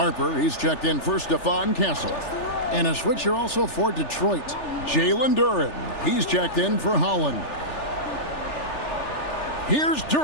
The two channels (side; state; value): right; late; 3.4 ms